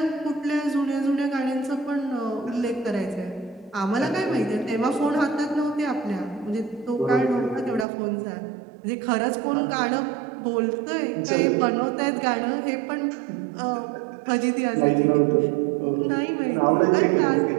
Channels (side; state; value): left; drops out; at 7.9 s